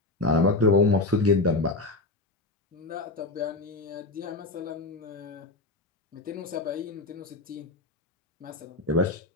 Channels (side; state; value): right; quieter; 3.0 dB